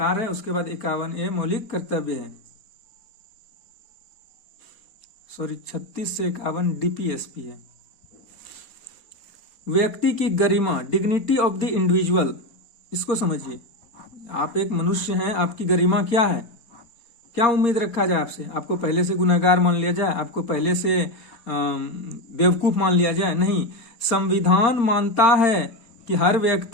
है, उसके बाद 51A मौलिक कर्तव्य है। सॉरी, 36 से 51 DPSP है। व्यक्ति की गरिमा, डिग्निटी ऑफ द इंडिविजुअल, इसको समझिए। आप एक मनुष्य हैं, आपकी गरिमा क्या है? क्या उम्मीद रखा जाए आपसे? आपको पहले से गुनहगार मान लिया जाए? आपको पहले से बेवकूफ मान लिया जाए, नहीं। संविधान मानता है कि हर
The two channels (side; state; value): right; late; 4.3 ms